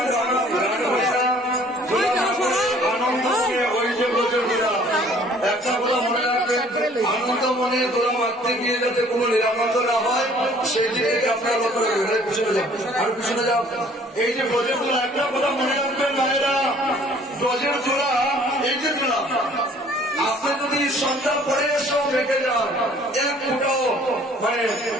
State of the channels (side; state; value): both; normal; correlation 0.55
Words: আনন্দ ওই যে প্রচুরা একটা কথা মনে রাখবেন, আনন্দ মনে তোরা মারতে গিয়ে যাতে কোনো নিরাপত্তা না হয় সেই দিকে আপনারা লক্ষ্য রাখবেন। পিছনে যাও, আরো পিছনে যাও। এই যে ব্রজের তোলা একটা কথা মনে রাখবেন ভাইরা, ব্রজের তোলা এই যে তোলা আপনি যদি সন্ধ্যা পরে এসেও রেখে যান এক ফুটাও মানে